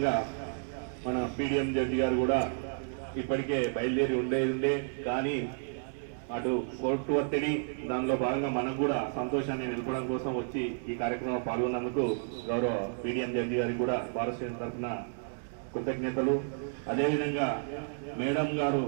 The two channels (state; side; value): silent; left; digital silence